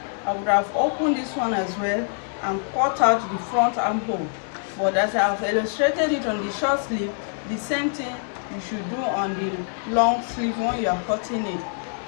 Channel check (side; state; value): right; silent; 62 dB below the other